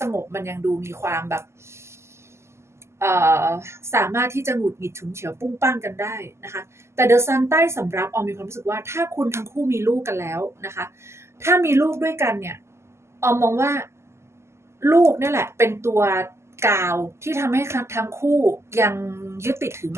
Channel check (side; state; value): left; late; 0.13 ms